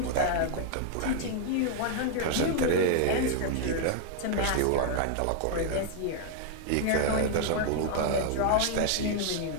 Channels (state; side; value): different; both; correlation 0.00